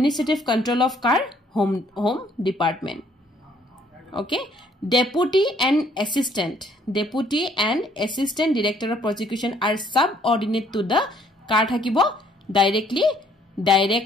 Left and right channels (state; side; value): normal; both; correlation 0.63